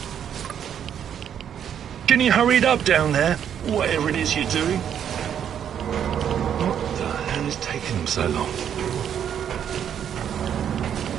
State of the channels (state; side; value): quieter; left; 9.0 dB